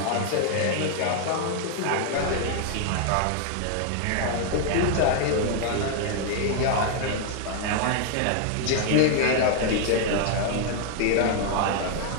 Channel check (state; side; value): different; both; correlation 0.00